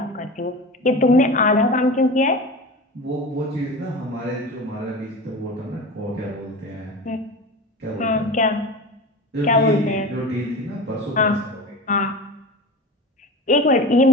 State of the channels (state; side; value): normal; both; correlation 0.31